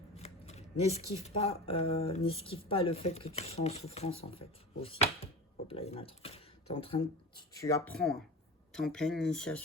n'esquive pas le fait que tu sois en souffrance, en fait, aussi. Hop là, il y en a trop. Tu apprends, hein. Tu es en pleine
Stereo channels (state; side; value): normal; both; correlation 0.32